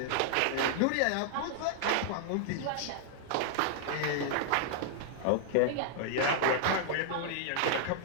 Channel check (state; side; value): different; both; correlation -0.01